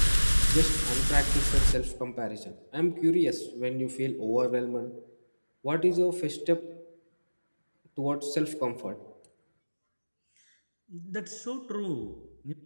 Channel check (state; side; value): inverted; both; correlation -1.00